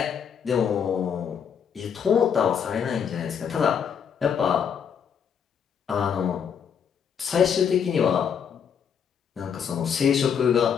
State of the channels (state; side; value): quieter; right; 7.6 dB